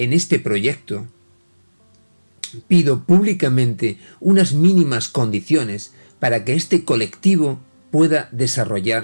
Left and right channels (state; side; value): inverted; both; correlation -1.00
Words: este proyecto, pido públicamente unas mínimas condiciones para que este colectivo pueda